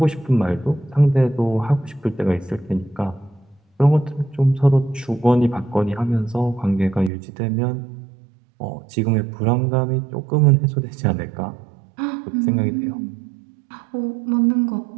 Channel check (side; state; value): left; drops out; at 7.1 s